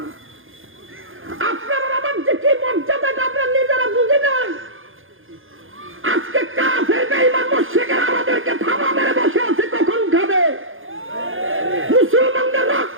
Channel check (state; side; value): late; left; 0.59 ms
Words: আপনার আমার যে কি মর্যাদা আমরা নিজেরা বুঝি না। আজকে কাফের বেঈমান মুশরিকরা আমাদেরকে থাবা মেরে বসে আছে, কখন খাবে? মুসলমানদের